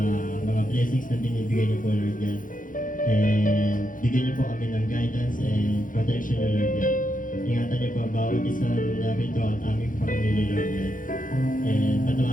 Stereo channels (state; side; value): late; right; 0.39 ms